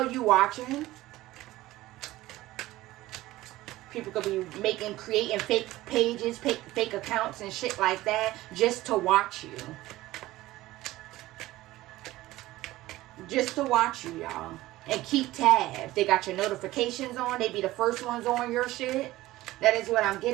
you watching. People could be creating fake pages, fake accounts and shit like that just to watch you. Just to watch you, y'all. And keep tabs. They got your notifications on. They be the first ones on your shit. That is what I'm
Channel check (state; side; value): quieter; left; 17.1 dB